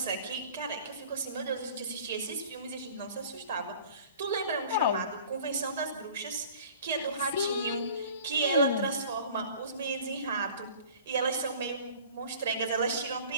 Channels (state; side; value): inverted; both; correlation -0.46